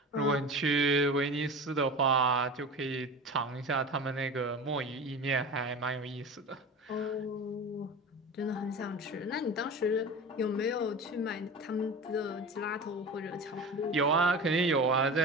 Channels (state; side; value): normal; both; correlation 0.32